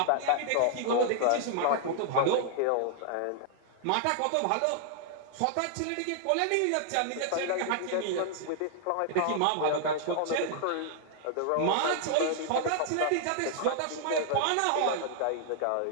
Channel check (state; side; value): different; both; correlation -0.01